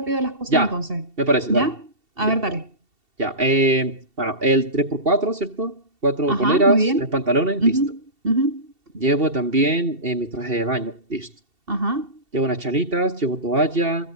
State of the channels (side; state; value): left; late; 2.7 ms